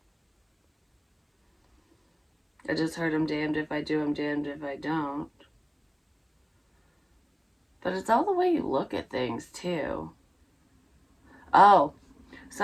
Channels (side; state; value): both; identical; correlation 1.00